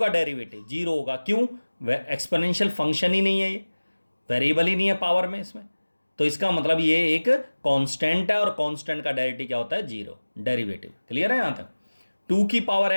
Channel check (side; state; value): both; inverted; correlation -1.00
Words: डेरिवेटिव 0 होगा। क्यों? एक्सपोनेंशियल फंक्शन ही नहीं है, ये वेरिएबल ही नहीं है पावर में इसमें। तो इसका मतलब ये एक कांस्टेंट है, और कांस्टेंट का डेरिवेटिव क्या होता है? 0 डेरिवेटिव। क्लियर है यहां तक? 2 की